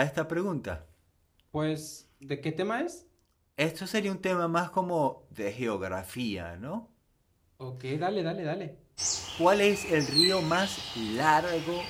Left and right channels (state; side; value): identical; both; correlation 1.00